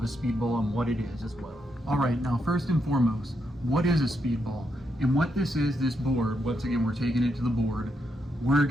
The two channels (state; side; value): normal; both; correlation 0.81